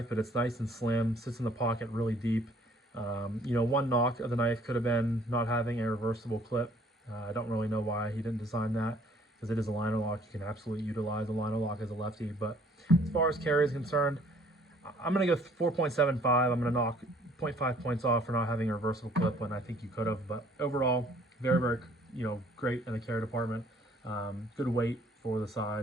but it's nice and slim, sits in the pocket really deep. One knock of the knife could have been not having a reversible clip. I don't really know why he didn't design that, because it is a liner lock. You can absolutely utilize a liner lock as a lefty. But as far as carry is concerned, I'm going to go 4.75. I'm going to knock 0.5 points off for not having a reversible clip when I think you could have. But overall, very great in the carry department. Good weight for the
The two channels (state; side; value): normal; both; correlation 0.58